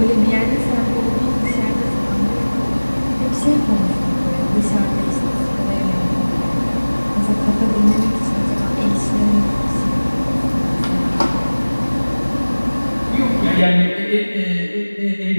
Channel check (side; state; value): both; inverted; correlation -1.00